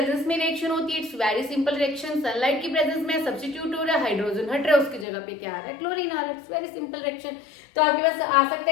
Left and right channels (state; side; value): drops out; right; at 5.1 s